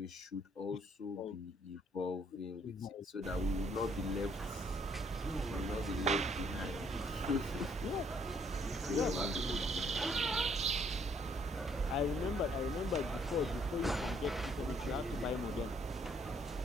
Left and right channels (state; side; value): normal; both; correlation 0.66